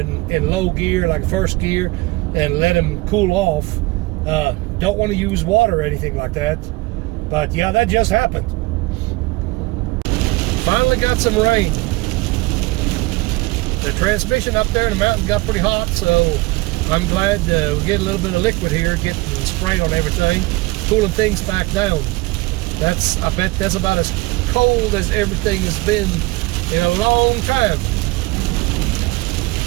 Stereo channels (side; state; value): left; quieter; 22.3 dB